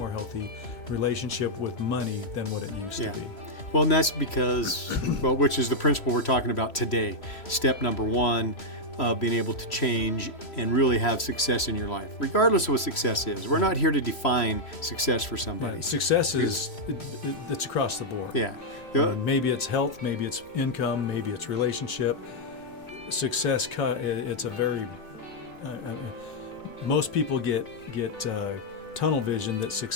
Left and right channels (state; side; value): late; right; 3.0 ms